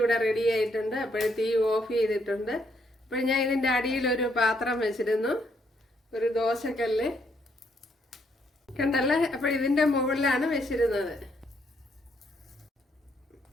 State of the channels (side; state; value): both; normal; correlation 0.73